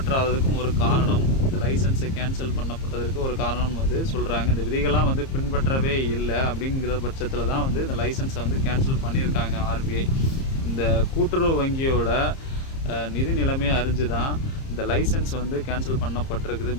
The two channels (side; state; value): right; late; 30 ms